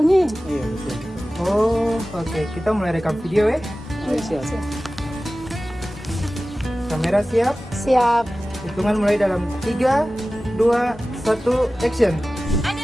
nih. Iya betul. Oh, oke. Kita mulai rekam video ya. Ayo, siap. Kamera siap. Siap. Hitungan mulai dalam 3, 2, 1, action.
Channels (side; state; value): both; normal; correlation 0.96